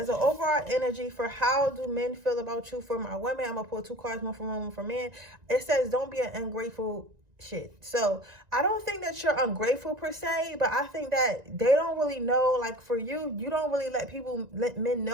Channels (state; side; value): late; left; 1.9 ms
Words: overall energy for how do men feel about you, for my women, I'm going to pull 2 cards, one for women, one for men. It says, don't be an ungrateful shit. So I don't think that you're ungrateful per se, but I think that they don't really know, like for you, you don't really let men